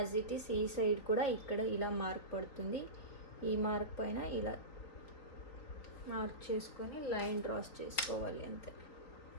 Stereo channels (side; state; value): right; late; 4.0 ms